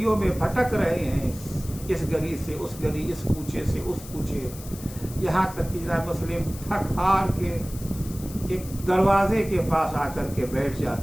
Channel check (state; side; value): noise; left; hiss, 16 dB below the sound